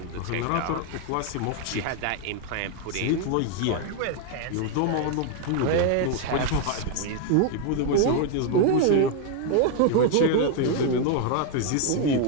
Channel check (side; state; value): both; different; correlation 0.00